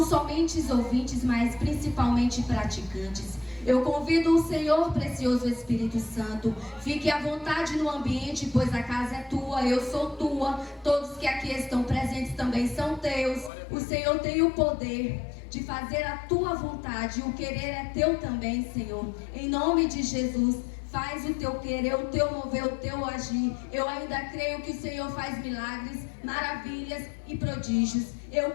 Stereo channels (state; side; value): drops out; right; at 13.5 s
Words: somente ouvintes, mas principalmente praticantes. Eu convido o Senhor, precioso Espírito Santo, fique à vontade no ambiente, pois a casa é tua, eu sou tua, todos que aqui estão presentes também são teus. O Senhor tem o poder de fazer a tua vontade, o querer é teu também, Senhor. Em nome de Jesus, faz o teu querer, o teu mover, o teu agir. Eu ainda creio que o Senhor faz milagres, maravilhas e prodígios.